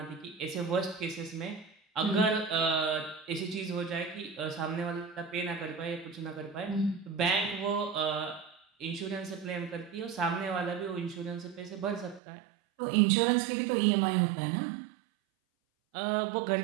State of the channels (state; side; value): drops out; left; at 12.2 s